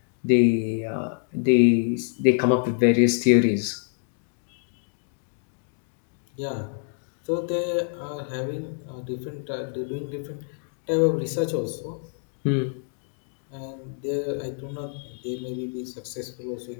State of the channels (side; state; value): right; silent; 56 dB below the other